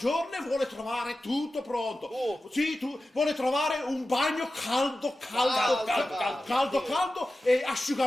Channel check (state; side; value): normal; both; correlation 0.94